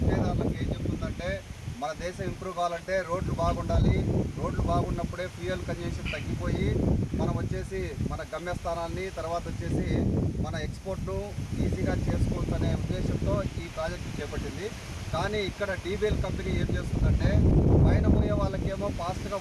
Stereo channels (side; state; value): both; identical; correlation 1.00